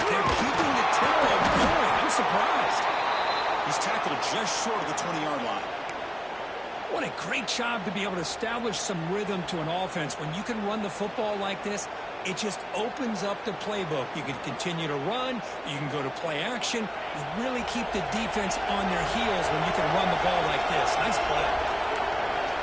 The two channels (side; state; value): both; identical; correlation 1.00